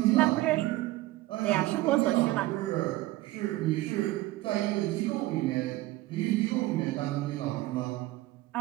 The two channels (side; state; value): left; quieter; 17.7 dB